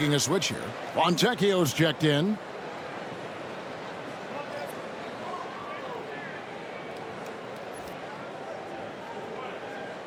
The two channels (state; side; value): identical; both; correlation 1.00